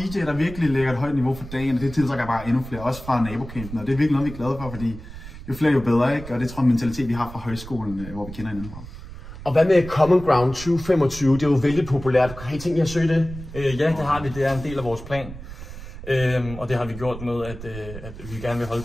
der virkelig lægger et højt niveau for dagen, og det tiltrækker bare endnu flere, også fra nabocampen. Og det er virkelig noget, vi er glade for, fordi jo flere, jo bedre, ikke? Og det tror jeg er en mentalitet, vi har fra højskolen, hvor vi kender hinanden fra. Og hvad med Common Ground 2025? Det er jo vældig populært. Har I tænkt jer at søge det? Ja, det har vi. Det er en del af vores plan. Og det har vi gjort med, at vi gerne vil holde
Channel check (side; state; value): right; noise; rumble, 13 dB below the sound